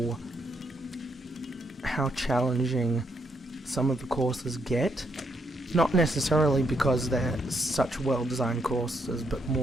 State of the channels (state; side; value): normal; both; correlation 0.76